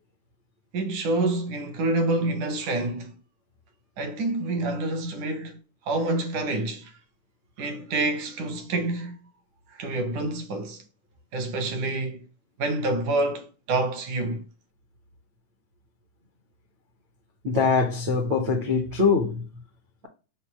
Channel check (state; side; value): late; left; 10 ms